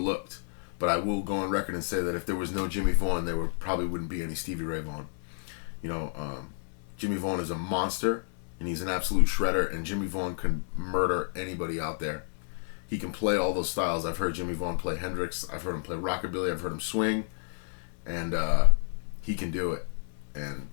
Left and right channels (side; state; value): right; silent; digital silence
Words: but I will go on record and say that if there was no Jimmy Vaughan, there probably wouldn't be any Stevie Ray Vaughan. Jimmy Vaughan is a monster, and he's an absolute shredder, and Jimmy Vaughan can murder anybody out there. He can play all those styles. I've heard Jimmy Vaughan play Hendrix, I've heard him play rockabilly, I've heard him swing, and he can do it. And